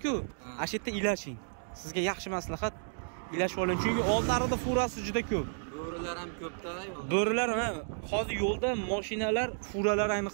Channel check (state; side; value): silent; left; digital silence